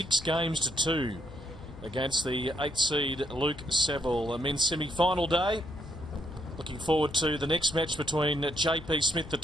games to 2 against the 8th seed Luke Saville. A men's semi-final day. Looking forward to the next match between JP Smith, the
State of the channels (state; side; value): noise; left; hum, 18 dB below the sound